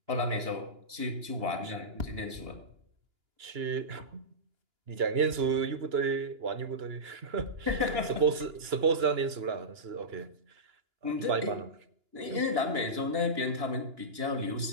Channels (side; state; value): left; late; 2.9 ms